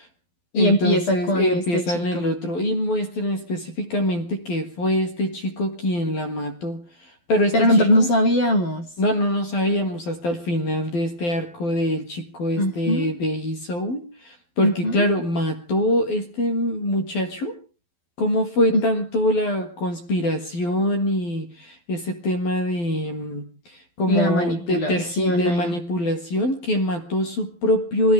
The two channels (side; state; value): right; late; 12 ms